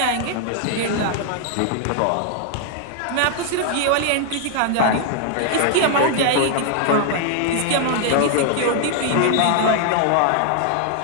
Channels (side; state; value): both; different; correlation 0.00